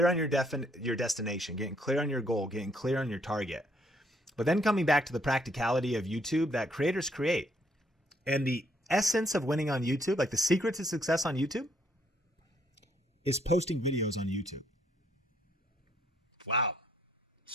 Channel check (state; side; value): normal; both; correlation 0.69